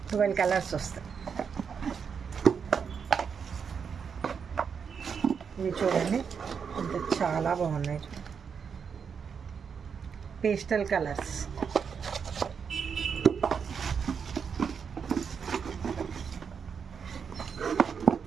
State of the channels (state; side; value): quieter; left; 6.5 dB